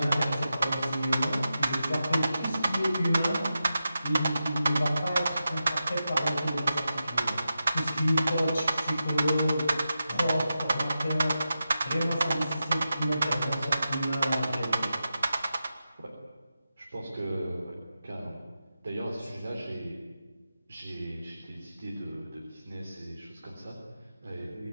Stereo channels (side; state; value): both; inverted; correlation -0.90